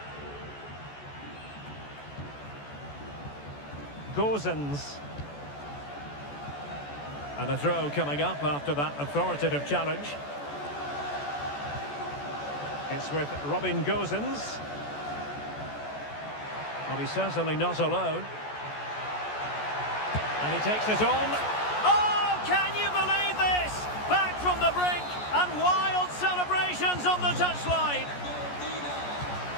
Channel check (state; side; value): late; right; 14 ms